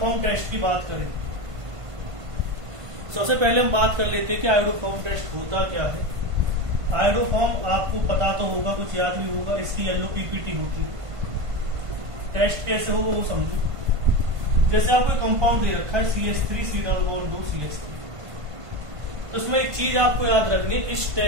टेस्ट की बात करें, सबसे पहले हम बात कर लेते हैं कि आयोडोफॉर्म टेस्ट होता क्या है। आयोडोफॉर्म आपको पता तो होगा, कुछ याद भी होगा, इसकी येलो पीपीटी होती है। टेस्ट कैसे होगा वो समझो। जैसे आपको कंपाउंड दे रखा है CH3 C+2 CH3, तो इसमें एक चीज आपको याद रखनी है, इस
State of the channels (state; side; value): late; left; 1.5 ms